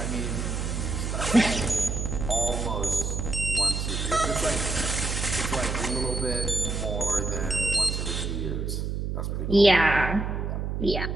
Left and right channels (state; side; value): noise; right; hum, 2 dB below the sound